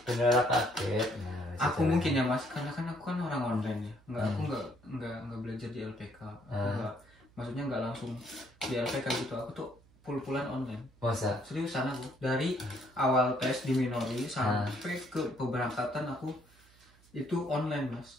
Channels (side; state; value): right; noise; hum, 28 dB below the sound